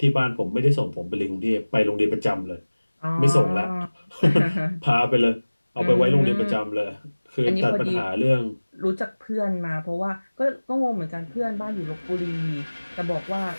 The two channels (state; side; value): inverted; both; correlation -1.00